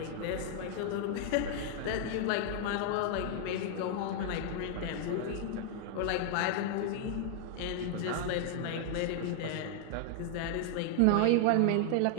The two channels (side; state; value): both; different; correlation 0.00